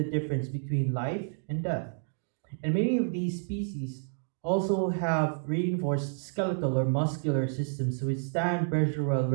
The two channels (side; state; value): left; silent; digital silence